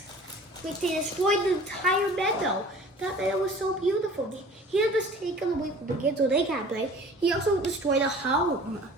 Like they destroyed the entire meadow. That meadow was so beautiful. He had just taken away from the kids so they can't play. He also destroyed a home.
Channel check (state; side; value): normal; both; correlation 0.46